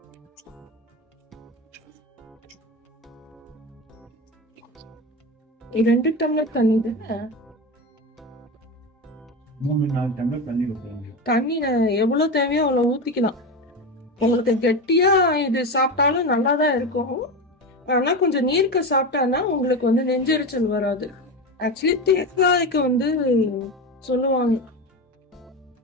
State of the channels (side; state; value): both; normal; correlation 0.21